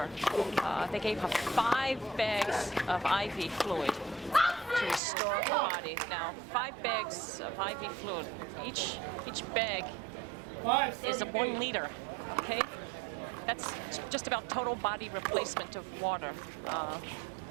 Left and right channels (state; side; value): drops out; left; at 5.0 s